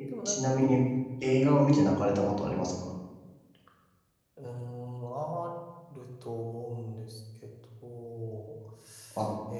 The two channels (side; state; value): both; identical; correlation 1.00